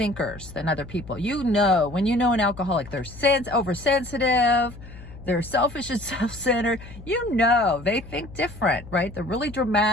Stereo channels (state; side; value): noise; left; hum, 16 dB below the sound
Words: than other people. You know, when you know an alcoholic, they're oversensitive, they're selfish and self-centered. You know, they think different, right? They're really